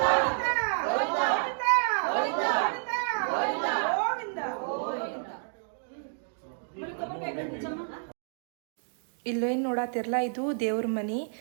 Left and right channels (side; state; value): left; silent; digital silence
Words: ಇಲ್ಲೇನು ನೋಡತ್ತಿರಲ್ಲ, ಇದು ದೇವ್ರ ಮನಿ.